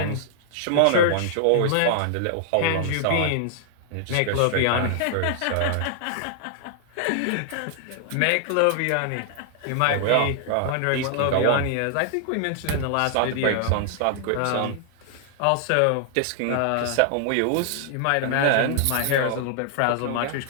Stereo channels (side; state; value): both; different; correlation -0.01